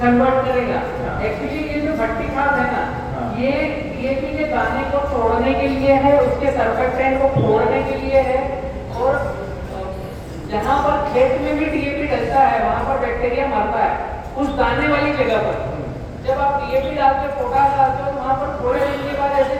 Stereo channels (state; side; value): identical; both; correlation 1.00